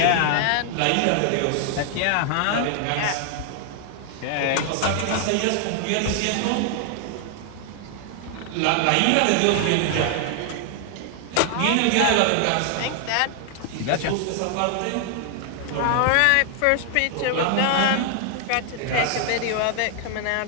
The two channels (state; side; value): different; both; correlation 0.00